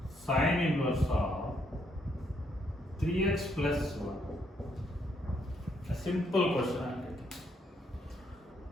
sine inverse of 3x plus 1. A simple question I'm taking.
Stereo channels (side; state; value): both; normal; correlation 0.73